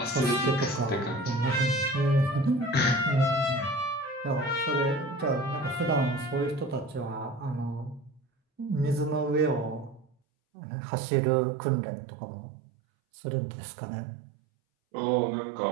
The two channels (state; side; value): drops out; left; at 10.1 s